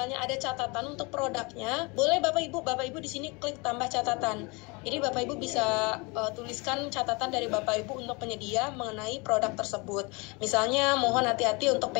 ada catatan untuk produknya, boleh Bapak Ibu di sini klik tambah catatan. Jadi Bapak Ibu bisa tuliskan catatan dari Bapak Ibu untuk penyedia mengenai produk tersebut. Misalnya mohon hati-hati untuk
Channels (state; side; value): quieter; right; 28.3 dB